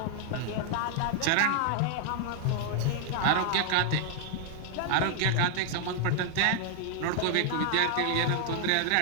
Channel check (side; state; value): both; different; correlation 0.00